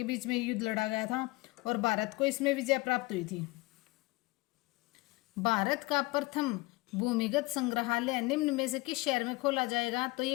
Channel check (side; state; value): right; quieter; 22.8 dB